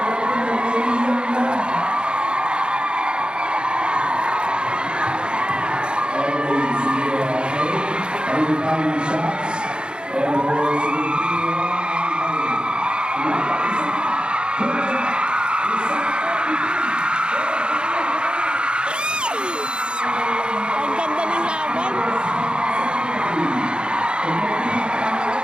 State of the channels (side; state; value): left; late; 0.052 ms